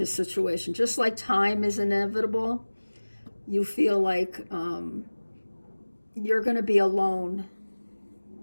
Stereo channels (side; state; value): both; inverted; correlation -1.00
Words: situation. Just like time is inevitable, you feel like you're going to be alone.